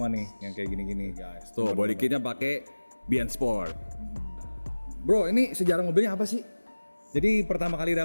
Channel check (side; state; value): both; inverted; correlation -1.00